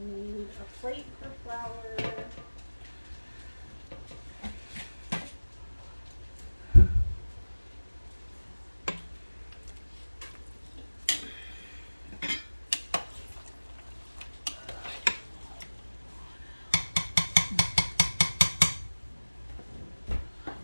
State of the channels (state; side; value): inverted; both; correlation -1.00